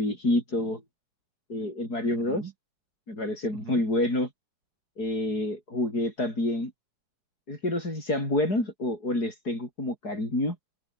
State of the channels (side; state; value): right; late; 4.7 ms